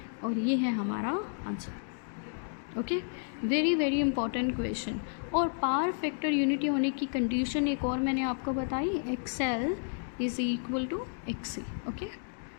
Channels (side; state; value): right; silent; digital silence